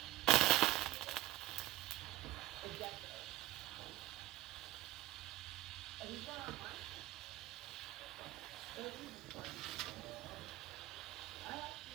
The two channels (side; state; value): left; quieter; 17.1 dB